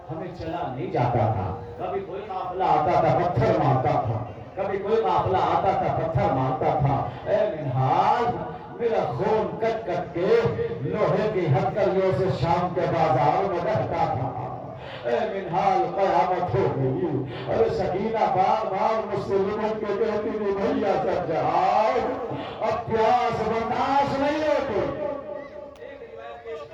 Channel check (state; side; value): identical; both; correlation 1.00